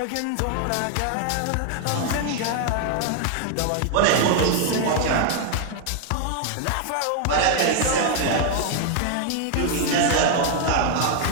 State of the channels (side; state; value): both; different; correlation 0.00